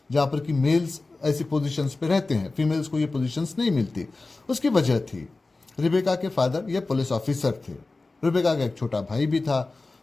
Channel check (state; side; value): quieter; right; 3.4 dB